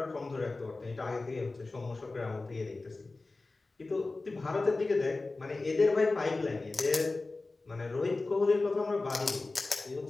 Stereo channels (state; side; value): quieter; right; 3.4 dB